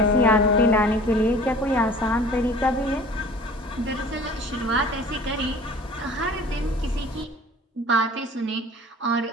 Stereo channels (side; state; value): both; normal; correlation 0.46